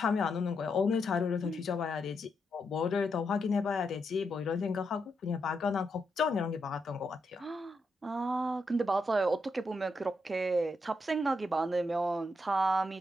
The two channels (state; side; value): normal; both; correlation 0.82